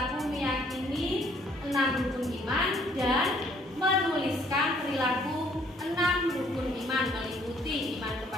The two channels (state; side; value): normal; both; correlation 0.63